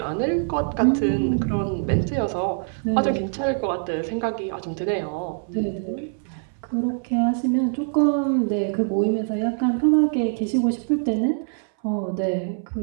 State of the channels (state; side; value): silent; left; 63 dB below the other